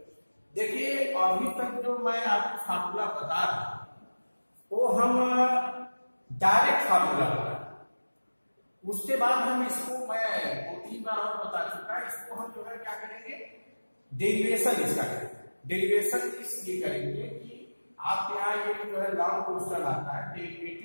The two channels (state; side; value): inverted; both; correlation -1.00